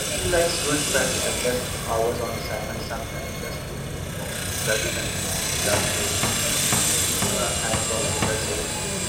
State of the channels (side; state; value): both; identical; correlation 1.00